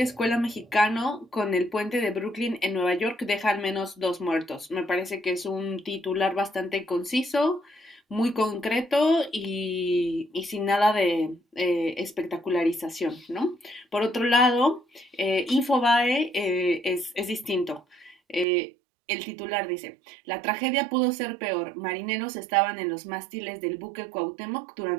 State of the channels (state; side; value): drops out; left; at 18.4 s